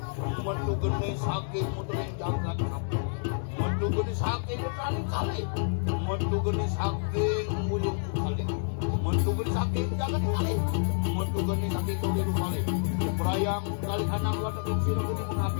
Mentu geni saking muter yang jagat sapu. Mentu geni saking berkali kali. Mentu geni saking mulyung kali. Mentu geni saking jagat kali. Mentu geni saking tulir kali. Berayang kali kadang wadah yang siru geni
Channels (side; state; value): right; silent; digital silence